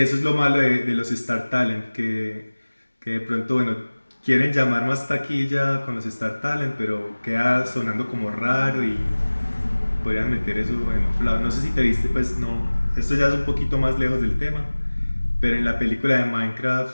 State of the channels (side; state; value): both; inverted; correlation -1.00